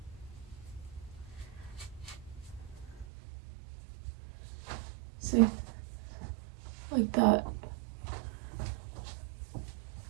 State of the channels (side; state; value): left; drops out; at 3.1 s